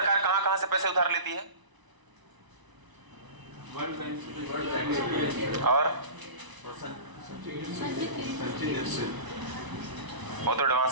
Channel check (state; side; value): late; left; 1.0 ms